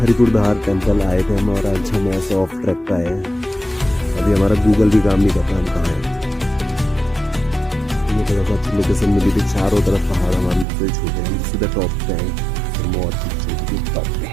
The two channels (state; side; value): drops out; left; at 10.7 s